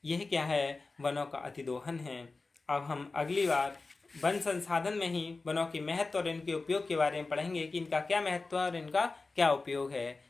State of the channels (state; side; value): quieter; right; 3.7 dB